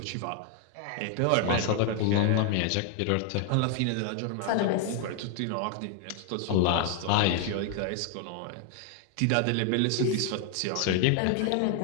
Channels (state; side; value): different; both; correlation 0.00